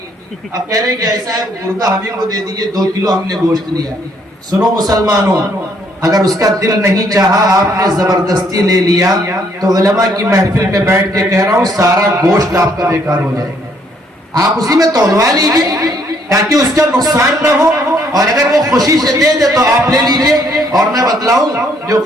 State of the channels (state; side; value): normal; both; correlation 0.68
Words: اب کہہ رہے ہیں کہ ایسا ہے گردہ ہمیں کو دے دیجئے، 2 کلو ہم نے گوشت لیا۔ سنو مسلمانوں، اگر اس کا دل نہیں چاہا، آپ نے زبردستی لے لیا، تو علماء کی محفل میں بیٹھ کے کہہ رہا ہوں سارا گوشت آپ کا بیکار ہو جائے گا۔ آپ اسی میں تولوا لیجئے تاکہ اس کا نقصان نہ ہو، اور اگر وہ خوشی سے دے دے تو آپ لے لیجئے۔ اور میں بتلاؤں جو